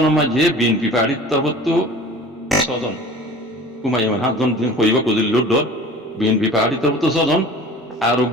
में जे BNP पार्टी तब तो सजन कुमायमान हाथ जन दिन कोई बात कुछ लुट डर BNP पार्टी तरफ तो सजन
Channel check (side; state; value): both; normal; correlation 0.42